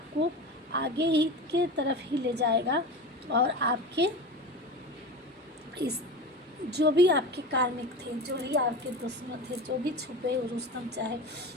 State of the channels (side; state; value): both; normal; correlation 0.29